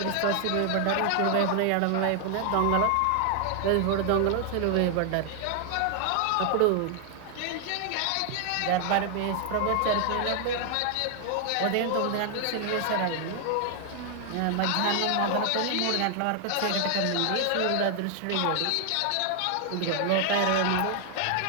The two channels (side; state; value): both; different; correlation 0.00